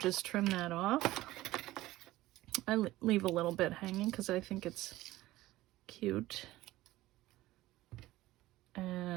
trim that off. I leave a little bit hanging because I think it's cute.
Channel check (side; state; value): left; quieter; 17.0 dB